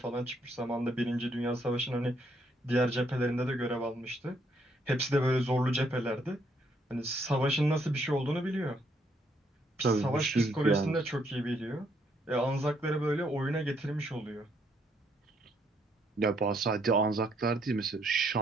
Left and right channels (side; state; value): both; normal; correlation 0.71